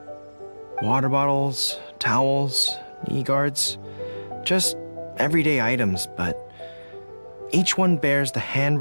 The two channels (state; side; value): inverted; both; correlation -1.00